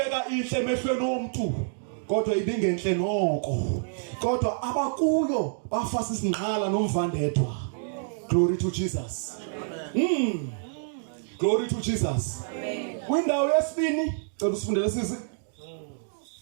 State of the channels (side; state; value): left; silent; digital silence